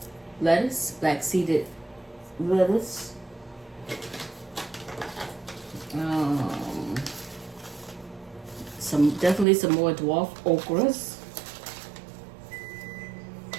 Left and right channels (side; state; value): left; drops out; at 9.5 s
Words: lettuce, black seeded lettuce. Definitely some more dwarf okras.